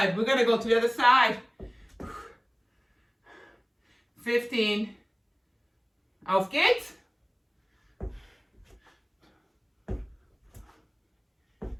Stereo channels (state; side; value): identical; both; correlation 1.00